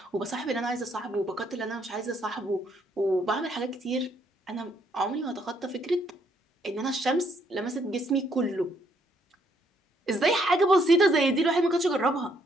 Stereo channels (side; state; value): both; normal; correlation 0.70